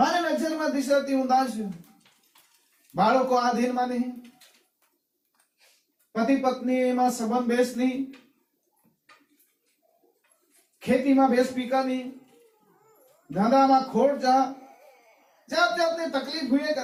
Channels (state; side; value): identical; both; correlation 1.00